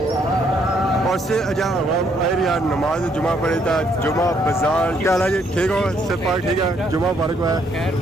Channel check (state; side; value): normal; both; correlation 0.70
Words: اور سے جہاں عوام آئی رہی ہے نماز جمعہ پڑھی تو جمعہ بازار کیا حال ہے جی ٹھیک ہو سب پاک ٹھیک ہے جمعہ مبارک ہوا ہے